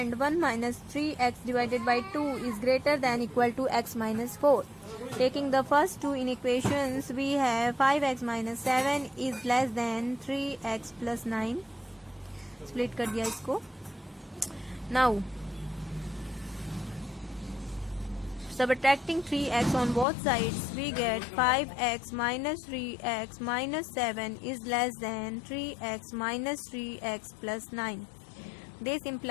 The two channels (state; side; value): drops out; right; at 20.1 s